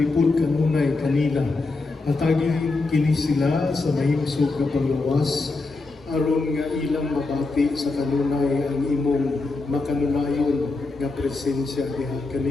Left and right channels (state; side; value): quieter; right; 3.6 dB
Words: kanunay kanila atagi kini sila sa mahimsog nga panglawas aron nga ilang mabati sa kanunay ang imong makanunayon nga presensya diha